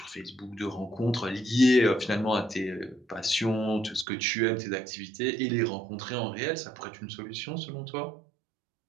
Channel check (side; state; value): left; drops out; at 4.0 s